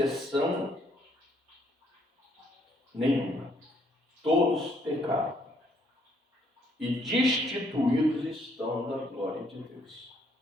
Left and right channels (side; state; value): both; normal; correlation 0.69